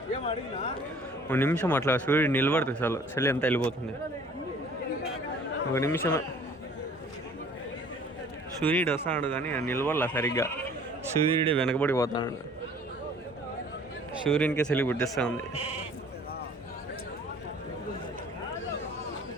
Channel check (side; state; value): both; normal; correlation 0.52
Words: ఒక నిమిషం అట్లా సూర్యుడు నిలబడుతుంది చలి అంతా వెళ్ళిపోతుంది ఒక నిమిషమే సూర్యుడు వస్తాడు కానీ నిలబడలా సరిగ్గా సూర్యుడు వెనకబడిపోతాడు సూర్యునికే చలి పుట్టిస్తూ ఉంది